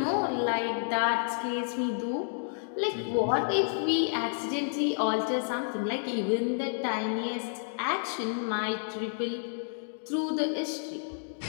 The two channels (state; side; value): silent; right; digital silence